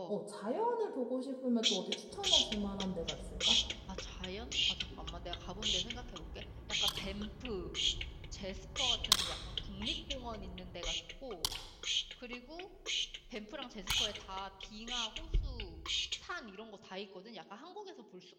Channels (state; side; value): identical; both; correlation 1.00